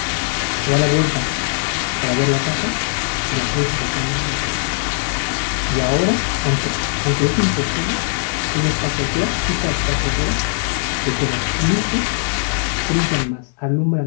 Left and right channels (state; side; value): silent; right; 63 dB below the other